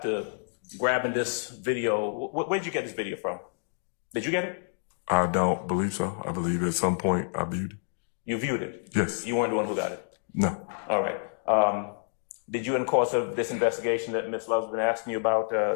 grabbing this video, where did you get this video from? Did you get it? I don't believe so. I believe at some point I viewed it. You viewed it? Yes. You weren't the one who got it? No. All right. Did you, in the course of this investigation that Ms. Love's been asking you about,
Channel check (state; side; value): silent; right; digital silence